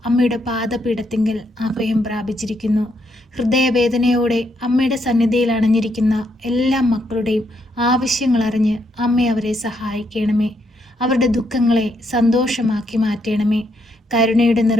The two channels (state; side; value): normal; both; correlation 0.76